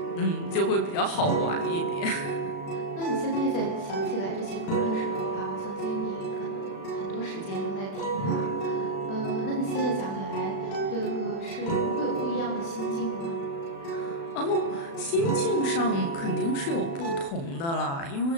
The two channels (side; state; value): right; late; 36 ms